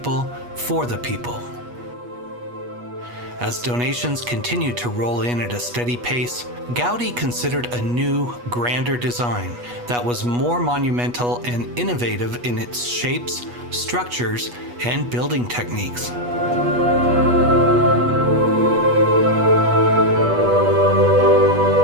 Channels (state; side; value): late; left; 8.3 ms